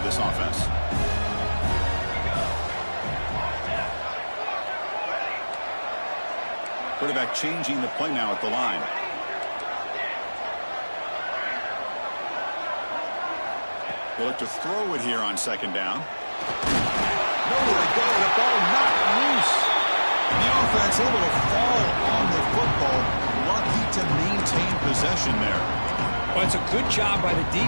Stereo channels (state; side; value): inverted; both; correlation -1.00